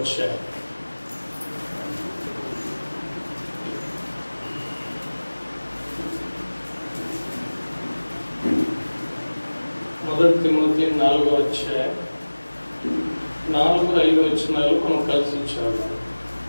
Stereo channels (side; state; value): both; inverted; correlation -1.00